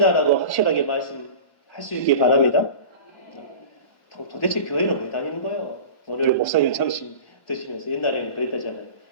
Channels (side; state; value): right; late; 1.2 ms